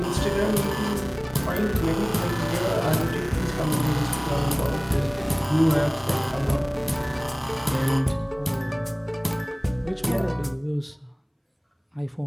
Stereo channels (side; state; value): both; identical; correlation 1.00